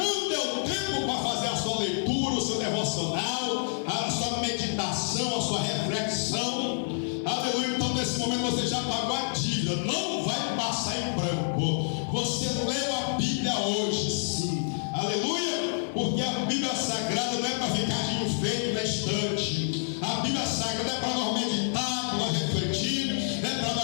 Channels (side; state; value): right; silent; digital silence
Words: deu tempo para fazer a sua leitura, o seu devocional, a sua meditação, a sua reflexão. Aleluia. Então nesse momento você já pagou a dívida, não vai passar em branco. Você leu a Bíblia hoje, sim. Aleluia. Porque a Bíblia Sagrada não é para ficar de enfeite na estante. A Bíblia Sagrada é para nós meditar, para nós refletir, é para